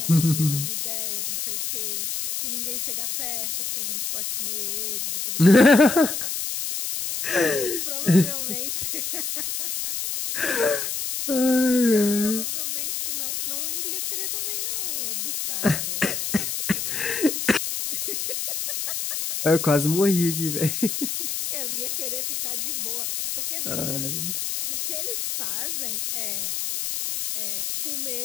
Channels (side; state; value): left; noise; hiss, 3 dB below the sound